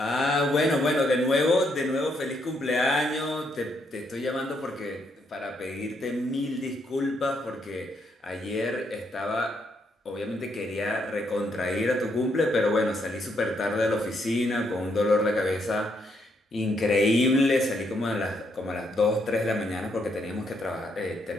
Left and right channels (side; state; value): both; normal; correlation 0.75